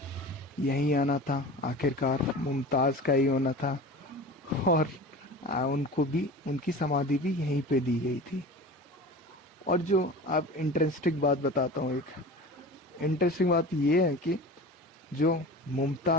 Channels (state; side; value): normal; both; correlation 0.35